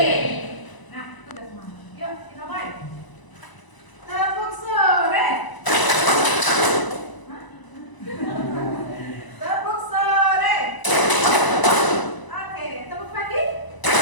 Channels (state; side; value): late; right; 1.0 ms